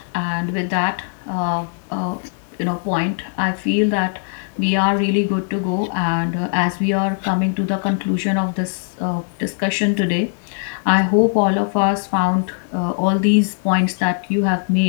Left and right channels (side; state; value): right; silent; digital silence